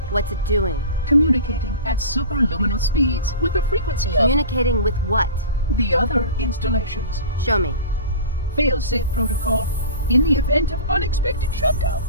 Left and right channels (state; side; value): inverted; both; correlation -0.35